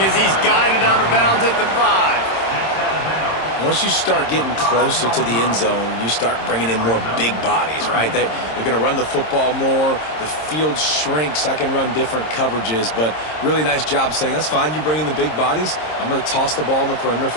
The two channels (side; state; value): right; late; 26 ms